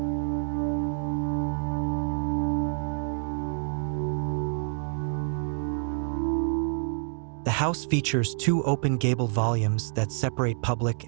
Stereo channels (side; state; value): left; silent; digital silence